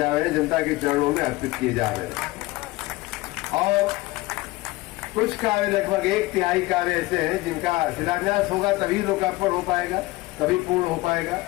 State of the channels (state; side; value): quieter; right; 20.1 dB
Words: रहे हैं, जनता के चरणों में अर्पित किए जा रहे हैं। और कुछ कार्य, लगभग 1/3 कार्य ऐसे हैं जिनका शिलान्यास होगा तभी लोकार्पण हो पाएगा, तभी पूर्ण हो पाएगा,